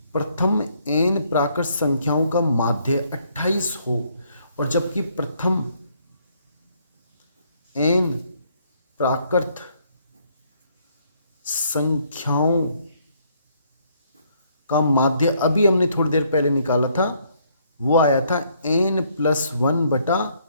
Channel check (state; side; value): inverted; both; correlation -0.68